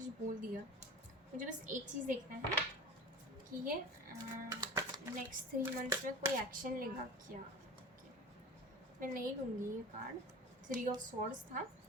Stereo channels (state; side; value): normal; both; correlation 0.34